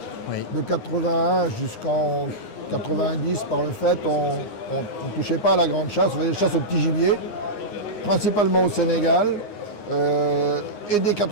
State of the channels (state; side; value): late; right; 9.6 ms